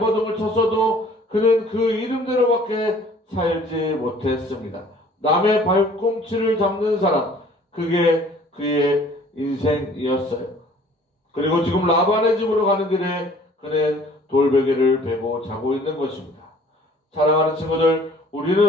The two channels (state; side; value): normal; both; correlation 0.53